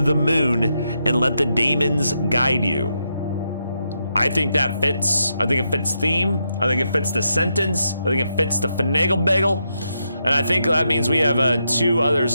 moon and let the daemons guide you. I think that fits. I think it fits theme. I think it fits the sentence. I think it fits the finagle bagel. And I think that means we have two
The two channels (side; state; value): both; inverted; correlation -0.82